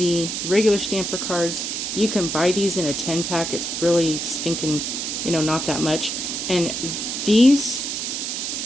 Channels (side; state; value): right; noise; hiss, 3 dB below the sound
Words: regular stamper cards. You can buy these in a 10-pack. It's really stinking, not that much. And these